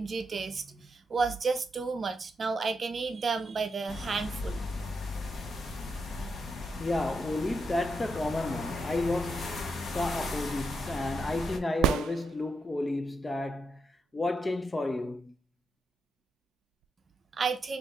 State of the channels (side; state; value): both; normal; correlation 0.82